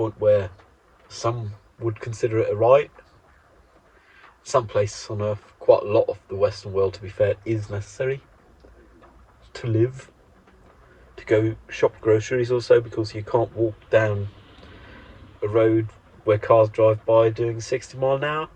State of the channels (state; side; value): identical; both; correlation 1.00